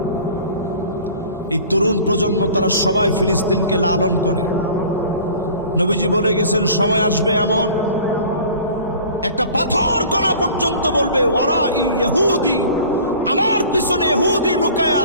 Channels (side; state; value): both; inverted; correlation -0.45